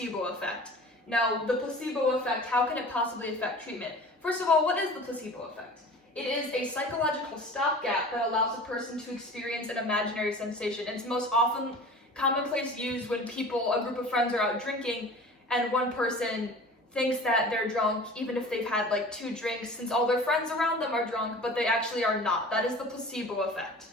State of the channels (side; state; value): both; normal; correlation 0.41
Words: effect. Now, the placebo effect, how can it possibly affect treatment? First of all, what is the placebo effect? It is a psychological stopgap that allows a person to experience an imaginary sensation. It's most often commonplace used when a group of friends are out drinking, and one person thinks that they're drunk even if they've had like 2 drinks, since all their friends around them are drunk, but they actually are not. That is the placebo effect.